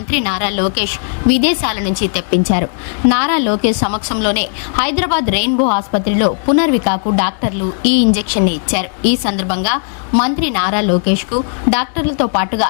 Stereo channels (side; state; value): right; silent; digital silence